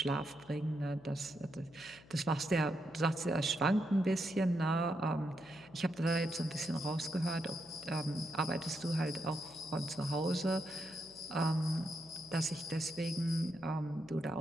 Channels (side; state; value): left; noise; hum, 23 dB below the sound